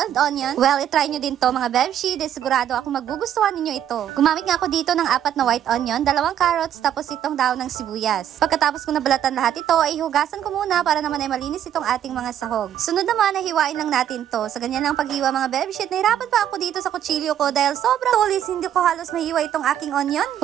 onion, well, i-try nyo din to mga Bebshi. Dahil sigurado ako magugustuhan ninyo ito. Gumamit nga ako dito ng 4 na white onion, 2 carrots, tapos itong daon ng sibuyas. Pagkatapos kong nabalatan lahat ito, ay hugasan ko muna para naman ay malinis itong ating mga sahog. Sunod naman ay hiwain lang natin to. Sa ganyan lang paghiwa mga Bebshi, nahirapan pa ako dito sa kutsilyo ko dahil sobrang tulis, hindi ko halos mahiwa itong aking onion.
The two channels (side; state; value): left; quieter; 10.4 dB